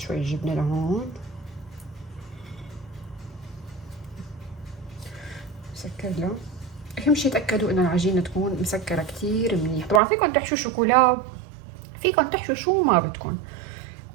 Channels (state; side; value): drops out; left; at 10.0 s